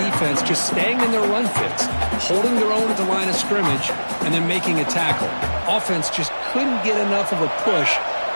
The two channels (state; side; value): inverted; both; correlation -1.00